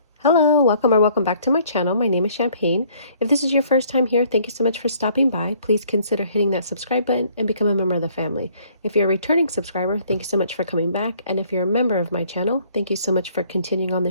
Hello, welcome or welcome back to my channel. My name is Champagne. If this is your first time here, thank you so much for stopping by. Please consider hitting that subscribe button and become a member of the family. If you're a returning subscriber, thank you so much for coming back. And if you're a member of my channel, thank you so much for continuing on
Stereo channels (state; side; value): inverted; both; correlation -0.60